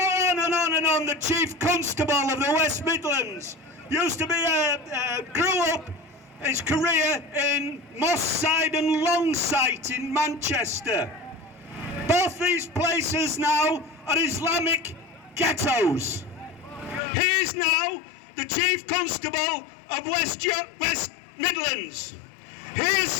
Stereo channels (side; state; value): right; drops out; at 17.0 s